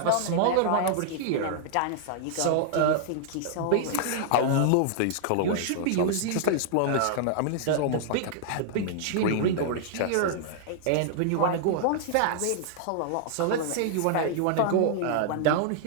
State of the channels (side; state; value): both; different; correlation -0.01